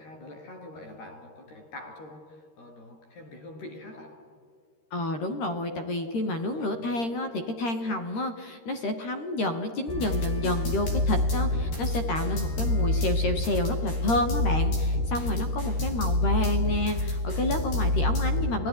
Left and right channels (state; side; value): late; right; 13 ms